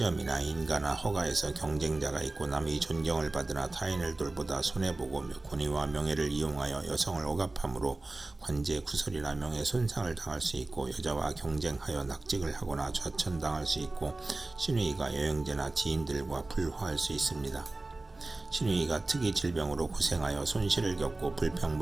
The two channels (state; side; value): quieter; left; 3.0 dB